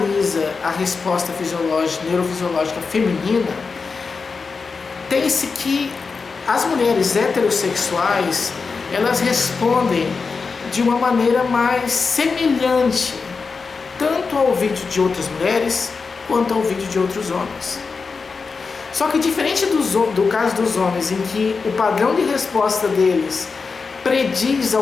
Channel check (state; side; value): quieter; right; 4.8 dB